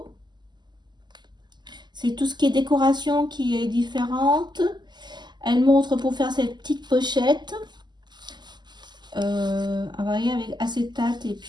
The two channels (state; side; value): late; left; 0.21 ms